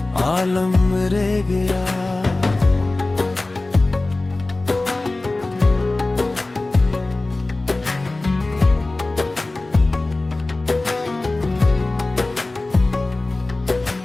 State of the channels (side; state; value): right; quieter; 3.0 dB